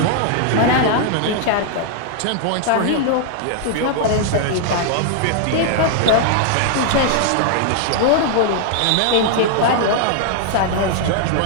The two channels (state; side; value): different; both; correlation -0.01